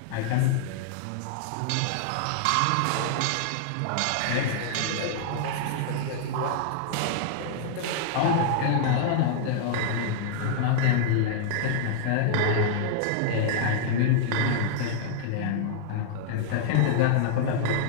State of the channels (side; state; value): both; different; correlation -0.01